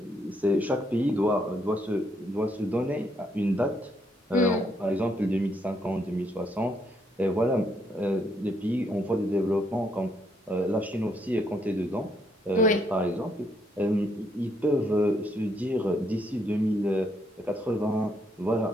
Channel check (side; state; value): both; normal; correlation 0.73